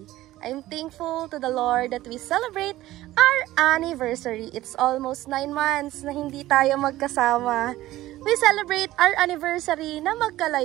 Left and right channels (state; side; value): quieter; left; 15.8 dB